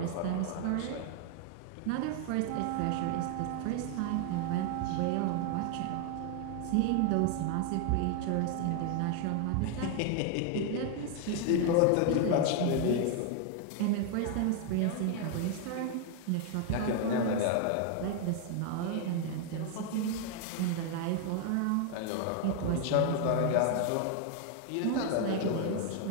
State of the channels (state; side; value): different; both; correlation 0.00